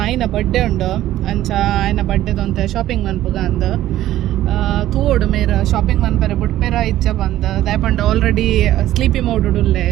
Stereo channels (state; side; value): quieter; left; 13.8 dB